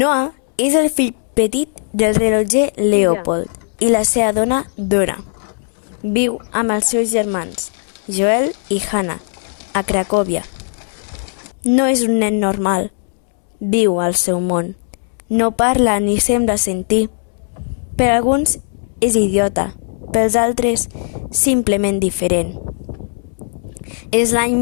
és el fill petit del rellotger Leopold i la seva dona Dora. Viu amb els seus germans, Joel i Hannah, a Cracòvia. No és un nen normal. Viu al seu món. No parla ni sembla sentir. Per alguns és idiota, pels altres simplement diferent. És l'any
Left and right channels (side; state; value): right; silent; 68 dB below the other